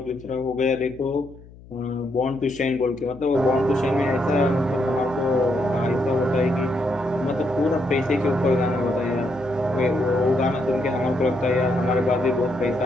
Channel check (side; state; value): left; noise; hum, 21 dB below the sound